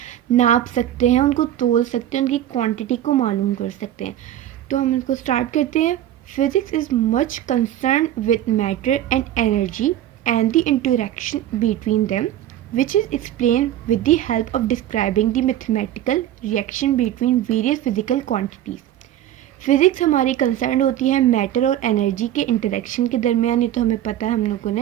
नाप सकते हैं, उनको तोल सकते हैं, उनकी क्वांटिटी को मालूम कर सकते हैं। तो हम इसको स्टार्ट करते हैं। Physics is much concerned with matter and energy and the interaction between them, which is explained with the help of describing the mathematical reaction between various physical quantities. Physics हमारी कंसर्न होती है मैटर और एनर्जी के इंटरेक्शन के दरमियान। ये तो हमें पता है, हम लोगों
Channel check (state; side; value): quieter; left; 12.3 dB